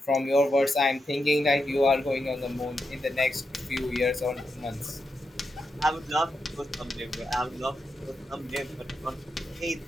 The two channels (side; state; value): both; normal; correlation 0.86